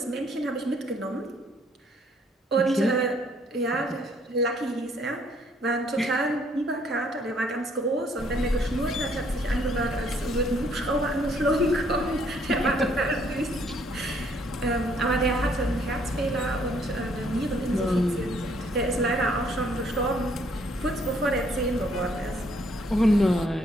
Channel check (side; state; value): both; normal; correlation 0.66